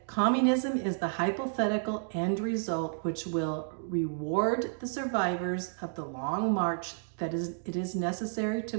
communism is the hypothetical end result which will reward the survivors of the long march that it is necessary to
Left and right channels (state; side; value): silent; left; digital silence